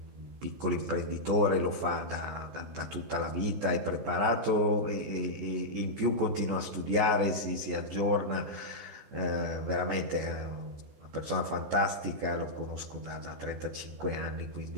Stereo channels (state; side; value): late; left; 14 ms